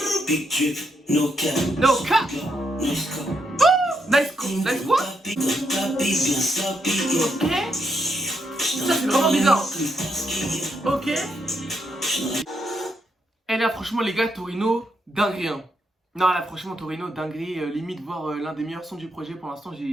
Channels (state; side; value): normal; both; correlation 0.78